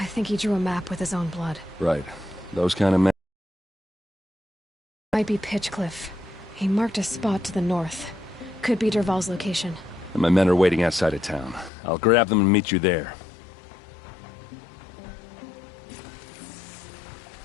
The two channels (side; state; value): right; drops out; at 11.7 s